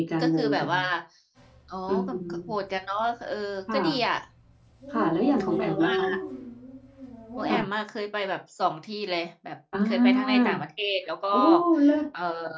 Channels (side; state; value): both; identical; correlation 1.00